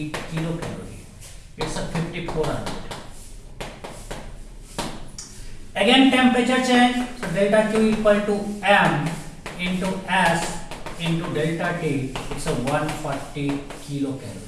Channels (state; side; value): identical; both; correlation 1.00